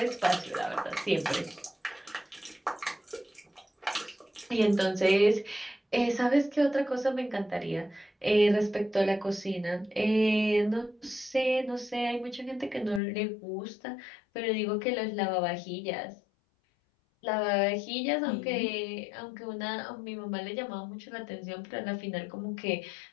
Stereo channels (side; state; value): right; drops out; at 13.0 s